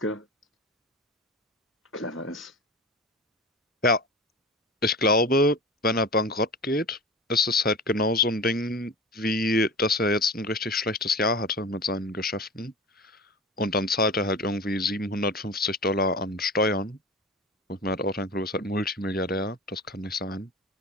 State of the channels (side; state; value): both; normal; correlation 0.33